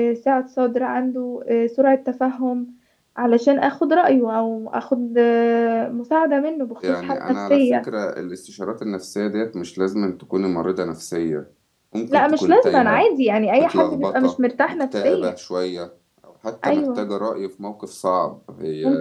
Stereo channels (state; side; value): identical; both; correlation 1.00